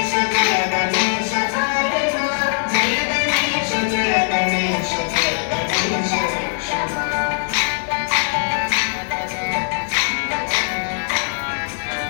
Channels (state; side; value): silent; right; digital silence